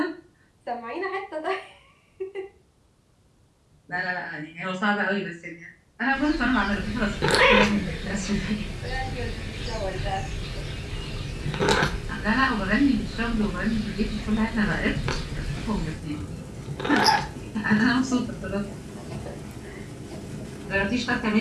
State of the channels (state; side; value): identical; both; correlation 1.00